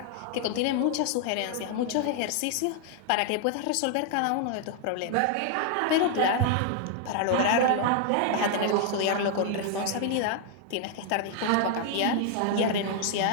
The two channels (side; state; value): both; different; correlation 0.00